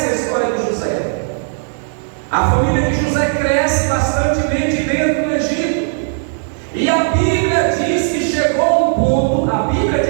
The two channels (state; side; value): silent; left; digital silence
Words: a história de José. A família de José cresce bastantemente dentro do Egito, e a Bíblia diz que chegou um ponto, a Bíblia